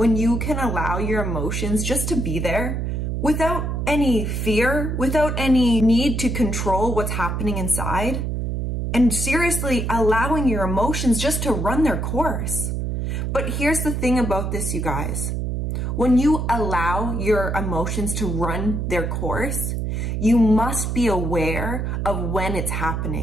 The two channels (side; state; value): right; noise; hum, 1 dB below the sound